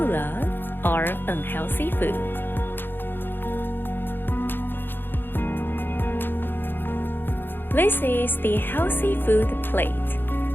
are unhealthy food. This is the healthy food plate.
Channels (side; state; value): right; late; 0.099 ms